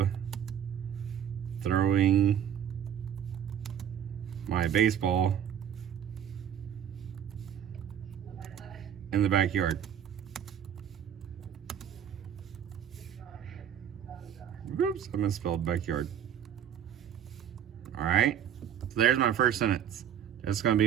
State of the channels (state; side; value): quieter; left; 9.3 dB